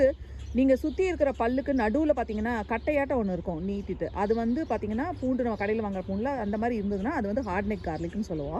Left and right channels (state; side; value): identical; both; correlation 1.00